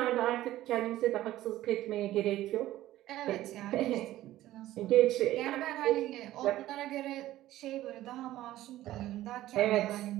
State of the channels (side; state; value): left; quieter; 14.8 dB